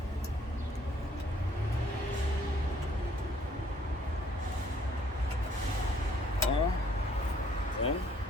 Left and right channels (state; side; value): normal; both; correlation 0.63